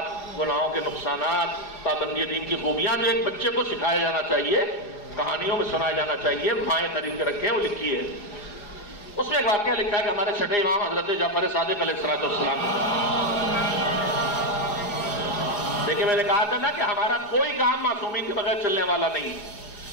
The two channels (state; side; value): late; right; 4.8 ms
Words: گناہوں کے نقصانات، پابندی دین کی خوبیاں جو ایک بچے کو سکھایا جانا چاہیے، کہانیوں میں سنایا جانا چاہیے، مائیں خرید کے رکھے ہیں، وہ لکھی ہے۔ اس میں ایک واقعہ لکھا ہے کہ ہمارے چھٹے امام حضرت جعفر صادق علیہ السلام، دیکھیں میں نے کہا تھا نا کہ ہمارا کوئی کام معصومین کے بغیر چلنے والا نہیں،